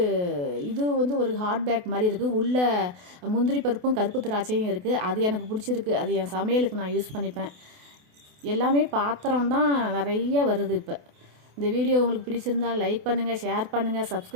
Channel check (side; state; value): left; late; 28 ms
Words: ஒரு ஹாட் பேக் மாதிரி இருக்குது. உள்ளே முந்திரி பருப்பும் கருப்பு திராட்சையும் இருக்குது. அது எனக்கு பிடிச்சிருக்கு. அது என் சமையலுக்கு நான் யூஸ் பண்ணிப்பேன். எல்லாமே பாத்திரம் தான் நிறைய வருது. இப்போ இந்த வீடியோ உங்களுக்கு பிடிச்சிருந்தால் லைக் பண்ணுங்கள், ஷேர் பண்ணுங்கள்,